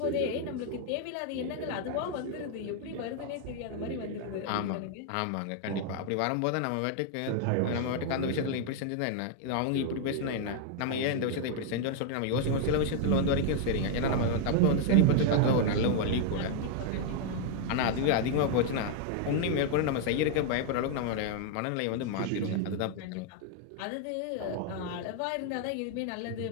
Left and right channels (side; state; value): both; different; correlation 0.00